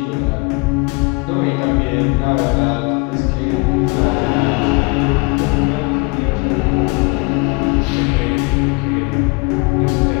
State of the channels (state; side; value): quieter; right; 29.6 dB